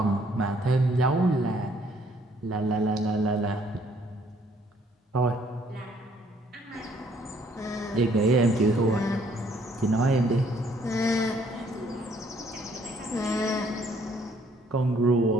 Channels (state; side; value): normal; both; correlation 0.64